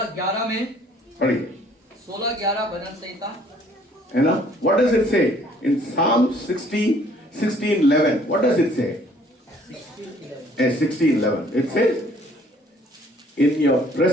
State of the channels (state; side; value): normal; both; correlation 0.59